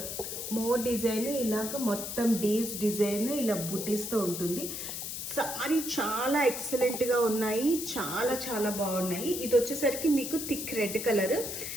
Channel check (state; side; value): noise; left; hiss, 6 dB below the sound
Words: మోర్ డిజైన్, ఇలాగ మొత్తం డీల్స్ డిజైన్ ఇలా బుటీస్తో ఉంటుంది. సారీ చాలా ఎక్సలెంట్గా ఉన్నాయి, చాలా చాలా బాగున్నాయి. ఇది వచ్చేసరికి మీకు థిక్ రెడ్ కలర్.